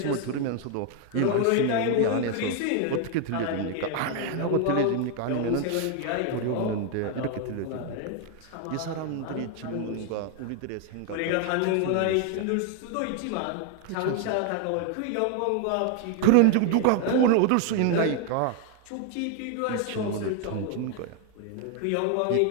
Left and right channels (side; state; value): both; different; correlation 0.00